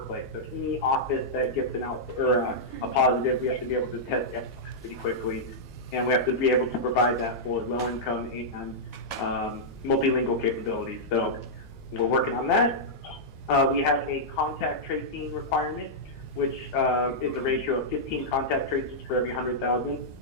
So any office that gets a positive, we have to be able to test pretty quickly, and we have to be able to provide that for low income and multilingual capabilities. So we're working on that. We have a contact tracing requirement, which is a ratio of 15 contact tracers for every 100,000.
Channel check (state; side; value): normal; both; correlation -0.09